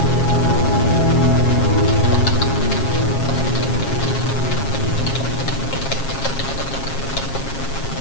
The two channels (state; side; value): late; right; 7.4 ms